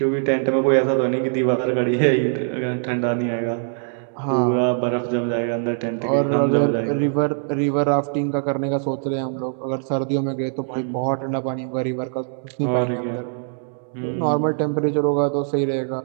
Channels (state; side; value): silent; left; digital silence